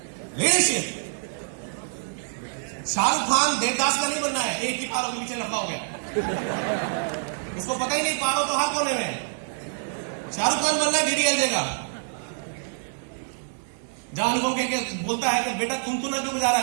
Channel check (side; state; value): left; silent; 61 dB below the other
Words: leadership. Shahrukh Khan Devdas का नहीं बनना है, एक ही पारों के पीछे लंबा हो गया, इसको पता ही नहीं पारों तो हर कोने में। शाहरुख खान बनना है डीडीएलजे का, जहां अनुपम के बोलता है कि बेटा तुम तो ना क्यों बजा रहा